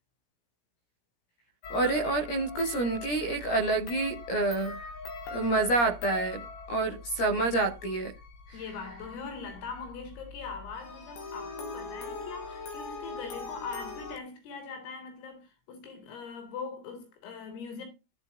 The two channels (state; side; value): late; right; 17 ms